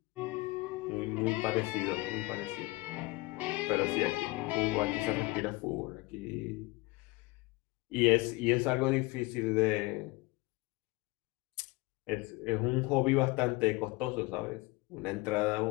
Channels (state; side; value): quieter; right; 23.2 dB